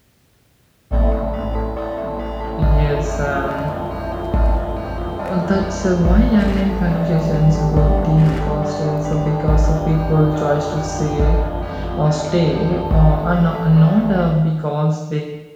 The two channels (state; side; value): identical; both; correlation 1.00